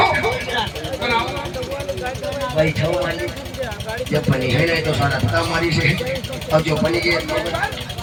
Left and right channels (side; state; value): both; identical; correlation 1.00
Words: हो बनाओ बैठो मालिक जब बनी है नहीं तो सारा हमारी से और जो बनी के